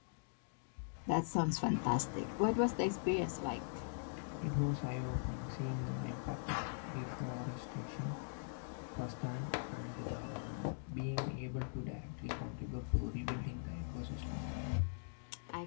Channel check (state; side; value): silent; right; digital silence